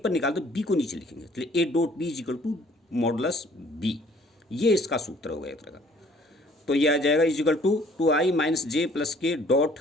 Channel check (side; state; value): both; normal; correlation 0.57